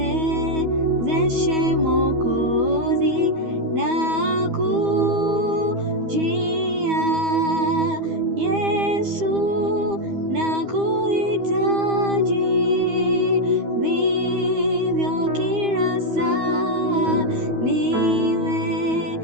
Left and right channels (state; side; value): late; left; 12 ms